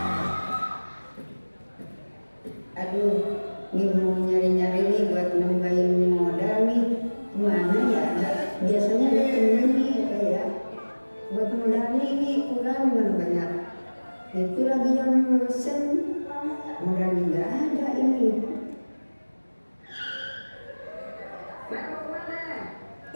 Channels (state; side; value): inverted; both; correlation -1.00